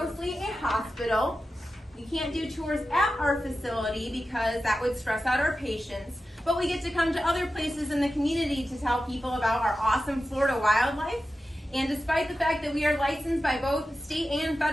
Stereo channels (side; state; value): both; normal; correlation 0.92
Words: a hospital. We can't do tours at our facility because that would stress out our patients. But we get to come to other places in the community to tell people about our awesome Florida wildlife. And despite the fact that we are licensed by both state and